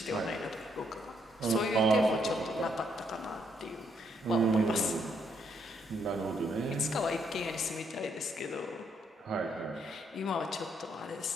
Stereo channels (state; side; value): normal; both; correlation 0.73